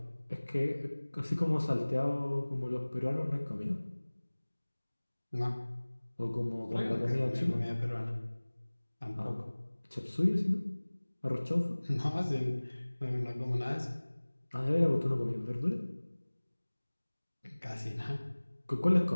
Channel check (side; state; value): both; inverted; correlation -1.00